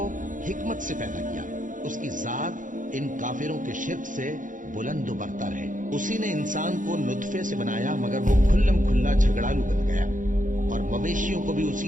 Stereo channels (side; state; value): left; late; 0.38 ms